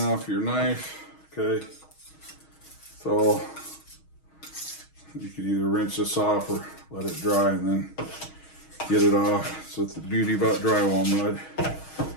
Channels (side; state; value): right; late; 6.3 ms